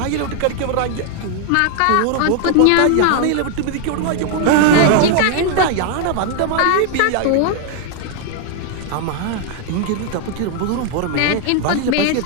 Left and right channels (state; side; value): different; both; correlation 0.00